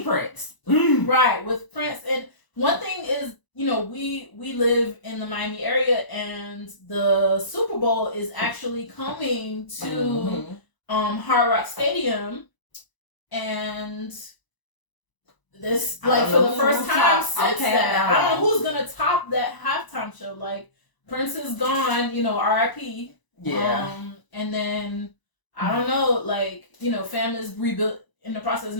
Prince, right, with Prince. And one thing is, we live in the Miami area, and the Super Bowl is actually coming to Hard Rock Stadium, and this like for the first time since that, I don't know who's gonna top that halftime show. Like, Prince is gone, R.I.P. Yeah. And then I don't know, like, fam is in the process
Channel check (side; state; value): right; late; 1.0 ms